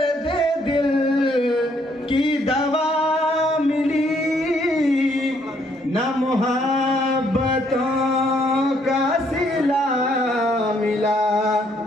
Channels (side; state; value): both; normal; correlation 0.69